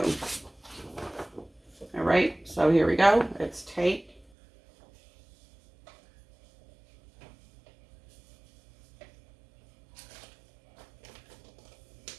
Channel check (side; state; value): left; drops out; at 4.2 s